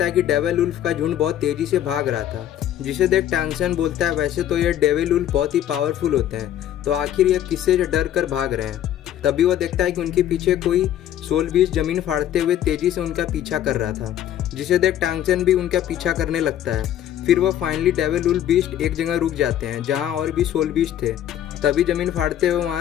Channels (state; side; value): quieter; right; 11.3 dB